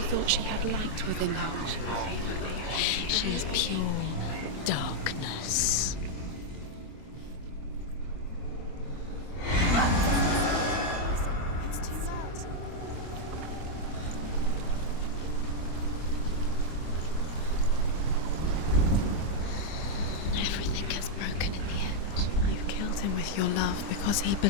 thought she had light within her. She is pure darkness. It's too loud. Everything gets broken in the end. You've killed him with your love because he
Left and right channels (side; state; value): right; late; 25 ms